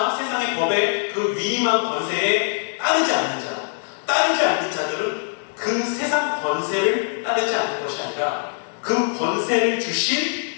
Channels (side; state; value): right; silent; digital silence